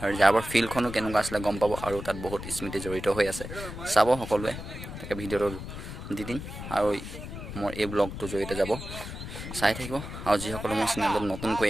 ৰিজাৰ্ভৰ ফিল্ডখনো কেনেকুৱা আছিলে গম পাব আৰু তাত বহুত স্মৃতি জড়িত হৈ আছে চাব সকলোৱে তাকে ভিডিঅ'টো দি দিম আৰু মোৰ এই ব্লগটোৰ জৰিয়তে যাব চাই থাকিব আৰু যিসকলে মোৰ চেনেলত নতুনকৈ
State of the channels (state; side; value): noise; left; rumble, 9 dB below the sound